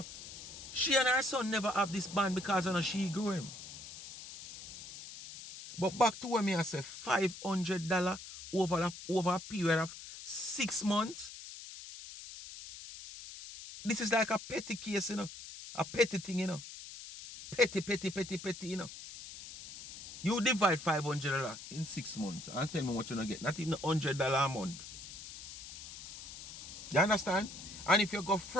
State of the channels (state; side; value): noise; left; hiss, 12 dB below the sound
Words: she and her son never have this bond because she grew him. But back to when I say $500 over a period of 6 months. This is like a petty case, you know. A petty thing, you know. Petty, you know. You divide $500 in 6 months and tell me what you're going to get. Not even $100 a month. You understand? And if you go